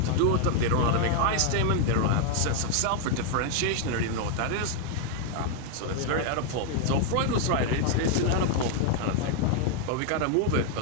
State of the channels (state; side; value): different; both; correlation 0.00